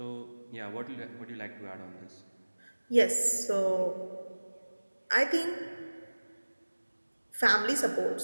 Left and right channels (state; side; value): inverted; both; correlation -1.00